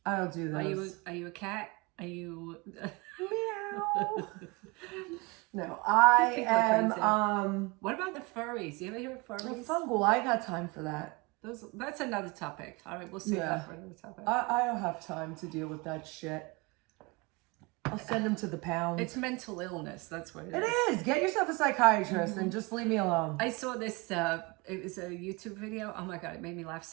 I don't do those. Are you a cat? Are you Meow. No, I People are am crazy. What about the furries? You ever hear of furries? fungal. I got time for that. That's another topic. All right, we'll save Yeah. that for another topic. I don't have time to deal with that shit. I'll send them to the pound. It's mental illness. That's what it It is. is. Get yourself a psychiatrist and just leave me alone. I saw this, it was a YouTube video. Oh my God, it made me laugh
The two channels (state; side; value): quieter; left; 26.5 dB